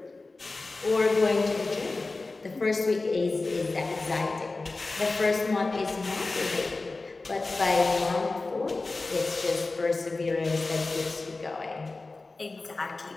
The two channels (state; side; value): quieter; right; 3.5 dB